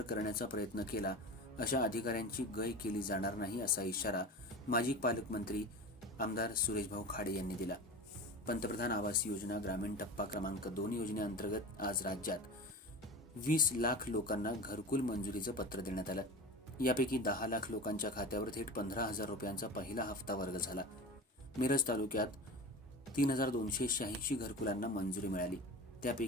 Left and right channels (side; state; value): both; normal; correlation 0.30